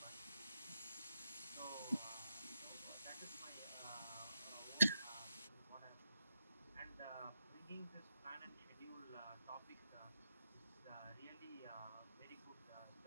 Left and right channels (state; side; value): inverted; both; correlation -0.84